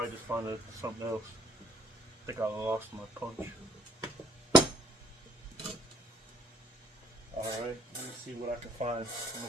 just find something else. I think I lost my punch. Alright, let me see what I can find.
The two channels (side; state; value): both; normal; correlation 0.61